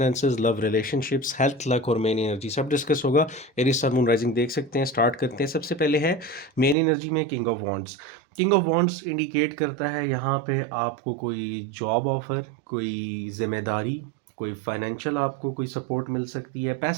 love, relationships, health, luck और मेन एनर्जी सब डिस्कस होगा। एरीज सन मून राइजिंग देख सकते हैं। स्टार्ट करते हैं। सबसे पहले है मेन एनर्जी में king of wands. King of wands indicate करता है यहाँ पे आपको कोई जॉब ऑफर, कोई जिम्मेदारी, कोई फाइनेंशियल आपको कोई सपोर्ट मिल सकती है,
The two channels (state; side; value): drops out; left; at 6.8 s